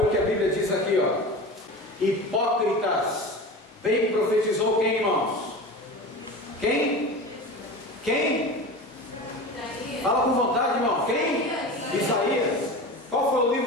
o que a Bíblia diz aqui, hipócritas, bem profetizou quem, irmãos? Quem? Fala com vontade, irmão. Quem? Isaías. Qual foi o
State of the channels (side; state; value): both; normal; correlation 0.31